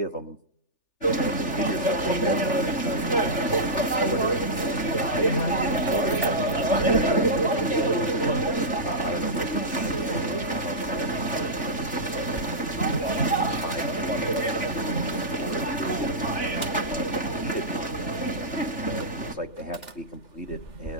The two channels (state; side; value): late; right; 3.4 ms